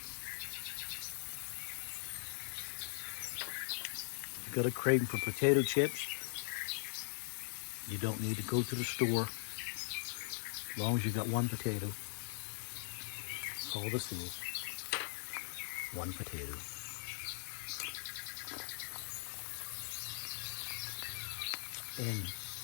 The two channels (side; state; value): right; silent; digital silence